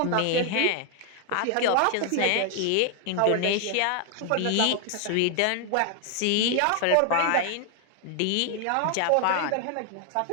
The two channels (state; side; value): different; both; correlation 0.00